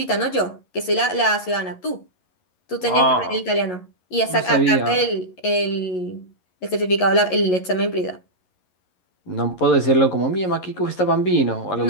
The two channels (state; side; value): late; right; 11 ms